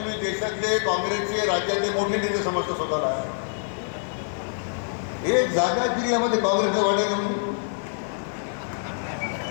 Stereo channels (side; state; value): right; silent; 61 dB below the other